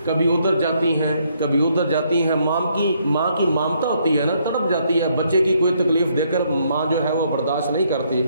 کبھی ادھر جاتی ہیں کبھی ادھر جاتی ہیں، ماں کی مامتا ہوتی ہے نا، تڑپ جاتی ہے، بچے کی کوئی تکلیف دے کر ماں جو ہے وہ برداشت نہیں کرتی،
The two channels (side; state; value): both; inverted; correlation -0.71